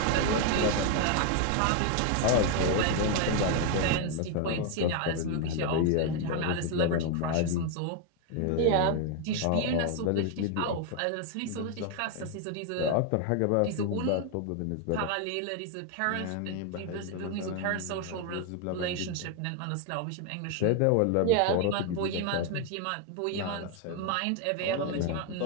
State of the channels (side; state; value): both; different; correlation 0.01